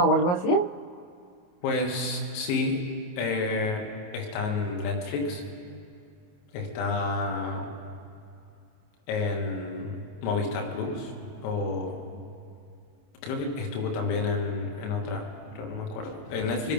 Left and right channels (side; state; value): right; late; 29 ms